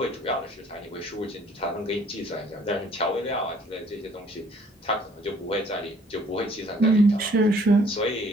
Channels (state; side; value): normal; both; correlation 0.59